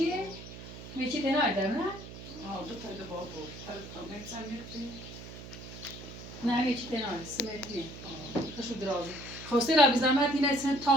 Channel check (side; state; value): right; noise; hum, 13 dB below the sound